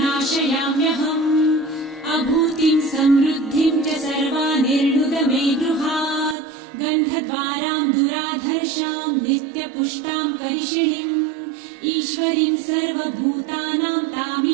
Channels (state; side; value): drops out; left; at 6.4 s